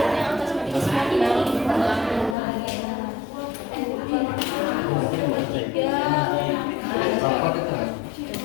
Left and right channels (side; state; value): right; drops out; at 2.4 s